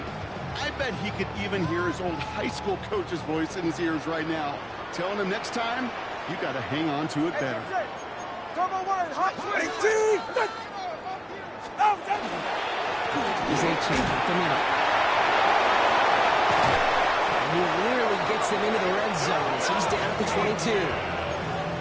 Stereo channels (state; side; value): identical; both; correlation 1.00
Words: I bet he could even hear his old high school coach's voice in his ears right now, telling him next time, you got to hang on to it better. He's a change up the middle. And he literally gets them into the red zone as he's down at the 22.